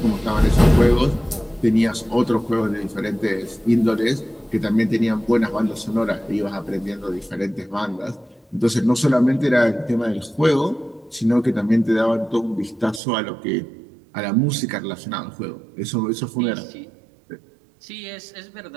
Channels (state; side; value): drops out; left; at 13.0 s